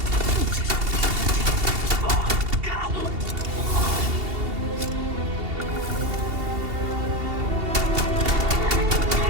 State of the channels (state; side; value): late; left; 2.8 ms